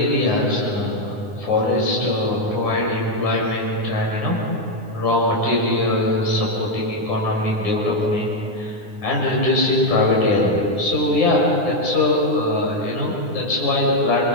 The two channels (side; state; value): left; late; 9.7 ms